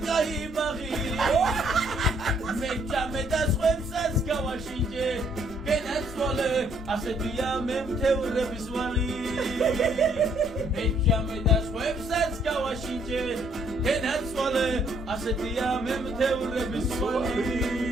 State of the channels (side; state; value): both; normal; correlation 0.67